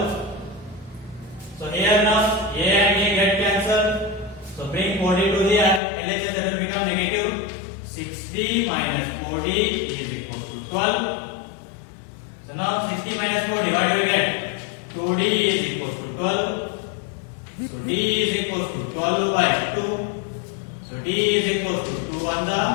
So here now A and A get cancelled. So bring 4D to the LHS, that will become negative. 60 minus 4D is equal to 12. So now 60 minus 4D, what do we get? 2D is equal to 12. So D is equal to 12 by 2. So D is equal to 2 on the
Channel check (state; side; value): drops out; right; at 5.8 s